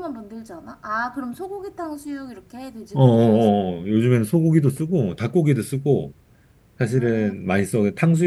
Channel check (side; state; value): both; identical; correlation 1.00